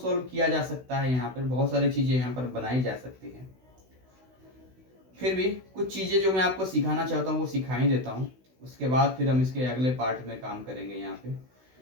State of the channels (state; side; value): late; left; 16 ms